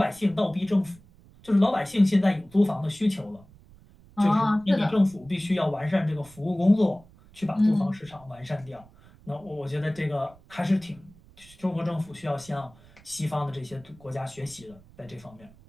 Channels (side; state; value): right; noise; rumble, 25 dB below the sound